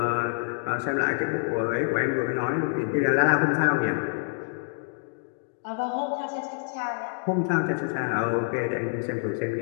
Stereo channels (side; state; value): right; silent; digital silence